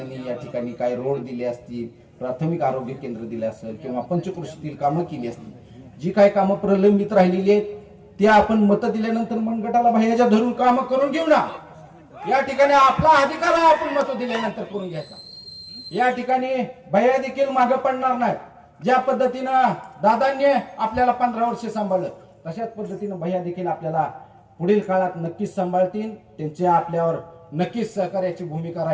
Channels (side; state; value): both; identical; correlation 1.00